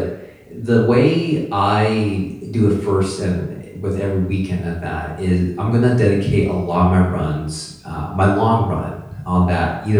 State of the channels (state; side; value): identical; both; correlation 1.00